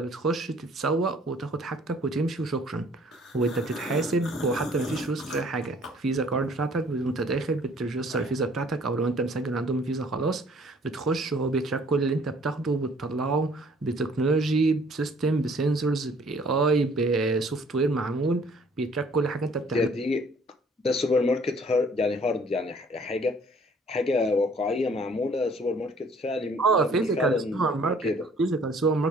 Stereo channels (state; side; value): normal; both; correlation 0.57